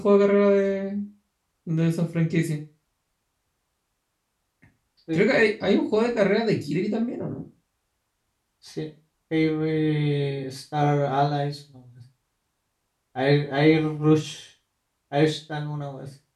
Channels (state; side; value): identical; both; correlation 1.00